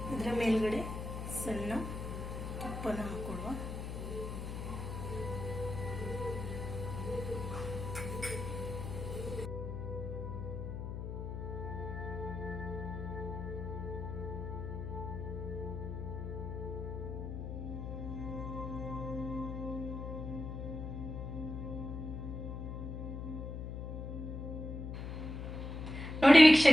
ಇದರ ಮೇಲ್ಗಡೆ ಸಣ್ಣ ತುಪ್ಪನ ಹಾಕೊಳ್ಳುವ. ನೋಡಿ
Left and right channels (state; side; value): noise; left; hum, 6 dB below the sound